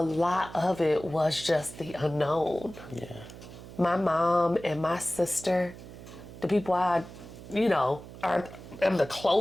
lot of it was just the unknown. Yeah. My mom and my sister, the people I, am the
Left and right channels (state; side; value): noise; right; hum, 15 dB below the sound